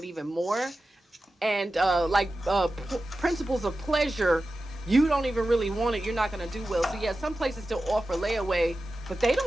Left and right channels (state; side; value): normal; both; correlation 0.93